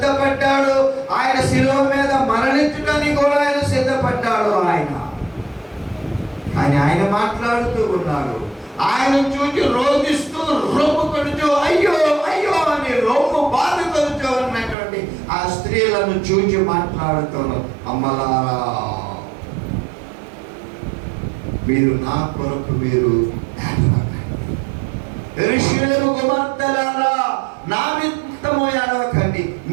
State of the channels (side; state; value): left; drops out; at 14.8 s